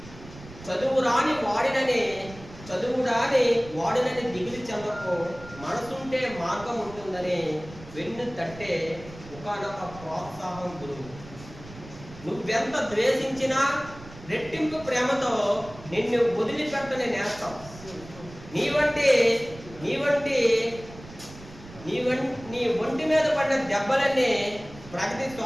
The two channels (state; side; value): noise; right; rumble, 17 dB below the sound